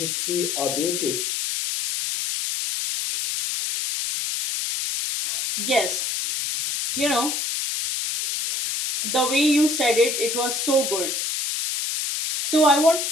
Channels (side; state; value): left; noise; hiss, 2 dB below the sound